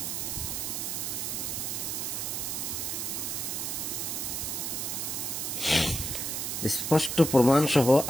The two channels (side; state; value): right; noise; hiss, 2 dB below the sound